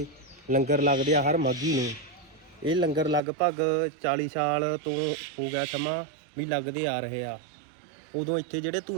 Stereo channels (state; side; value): drops out; left; at 3.2 s